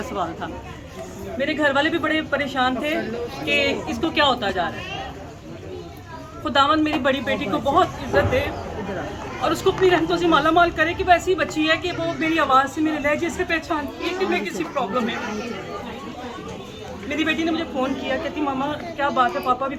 सवाल था। मेरे घर वाले भी बड़े परेशान थे कि इसको क्या होता जा रहा है। खुदावंद मेरी बड़ी बेटी को बहुत इज्जत दे, और उसको अपनी रहमतों से माला माल करे कि वो ऐसी बच्ची है कि वो मेरी आवाज़ से, मेरे लहजे से पहचानती है कि मैं किसी प्रॉब्लम में हूँ। मेरी बेटी ने मुझे फ़ोन किया, कहती मामा क्या बात है, पापा भी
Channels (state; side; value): identical; both; correlation 1.00